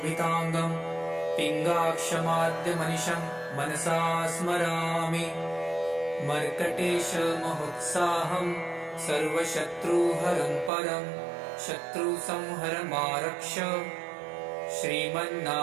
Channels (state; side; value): drops out; left; at 10.7 s